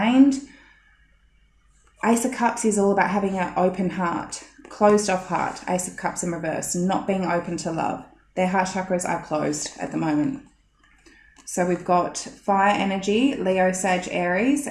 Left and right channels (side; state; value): both; identical; correlation 1.00